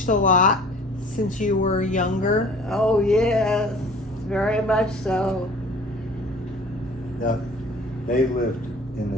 a lot since you were younger? Oh, yes. Very much so. Now, they lived in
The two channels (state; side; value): normal; both; correlation 0.48